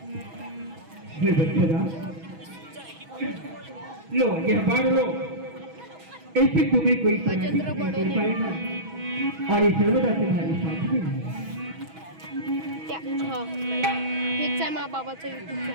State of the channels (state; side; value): late; left; 6.2 ms